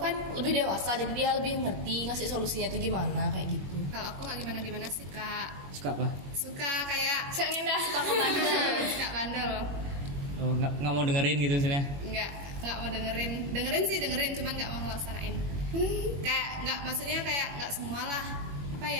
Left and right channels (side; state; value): left; late; 21 ms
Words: lebih dewasa, jadi dia lebih ngerti ngasih solusinya tuh gimana kayak gitu. Kalau aku nggak gimana sih kak. Suka apa? Suka kayak Saya ngindah. suka ngebandel. Suka bandel. Oh, nggak mau dengerin gitu maksudnya? Nggak mau dengerin sih cuman nggak mau ngelaksanain. Kayak nggak, maksudnya kayak nggak semua lah, apa